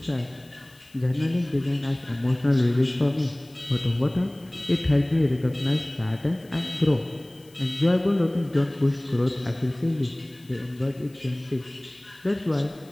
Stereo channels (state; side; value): noise; left; hiss, 28 dB below the sound